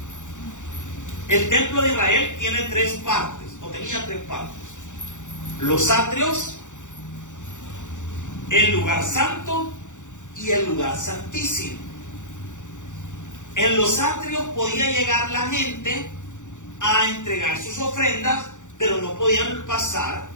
El templo de Israel tiene 3 partes, o tenía 3 partes. Los atrios, el lugar santo y el lugar santísimo. En los atrios podía llegar la gente a entregar sus ofrendas, pero no podían pasar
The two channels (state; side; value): late; right; 0.85 ms